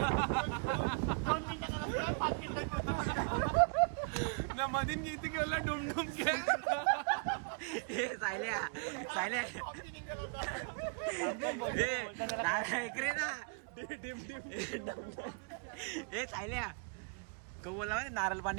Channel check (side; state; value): left; quieter; 39.2 dB